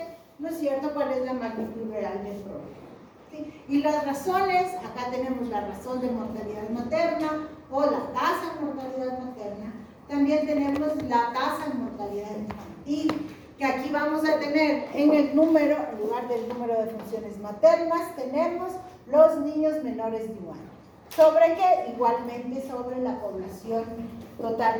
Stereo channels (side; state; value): both; identical; correlation 1.00